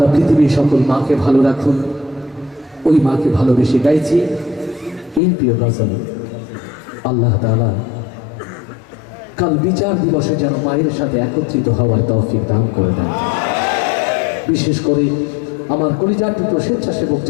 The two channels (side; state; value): right; drops out; at 5.2 s